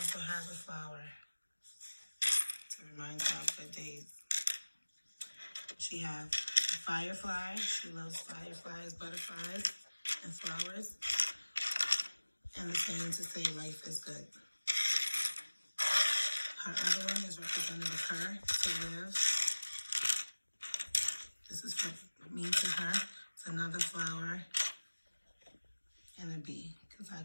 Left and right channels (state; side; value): inverted; both; correlation -1.00